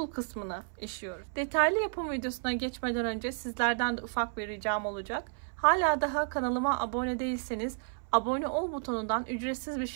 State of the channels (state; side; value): silent; left; 57 dB below the other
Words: kısmını işliyoruz. Detaylı yapım videosuna geçmeden önce sizlerden de ufak bir ricam olacak. Hala daha kanalıma abone değilseniz abone ol butonundan ücretsiz bir